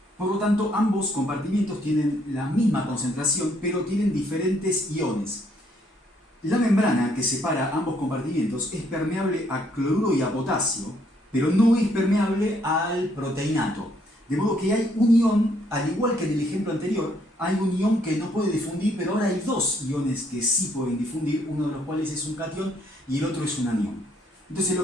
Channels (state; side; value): normal; both; correlation 0.69